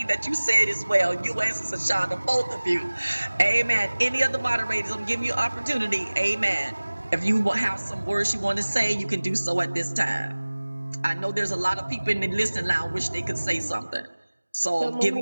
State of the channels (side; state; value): both; inverted; correlation -1.00